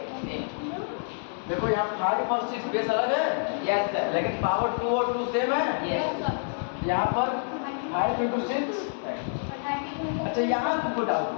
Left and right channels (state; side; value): silent; right; digital silence